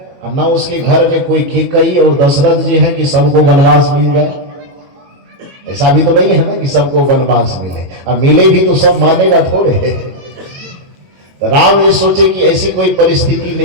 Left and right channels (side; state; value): left; late; 22 ms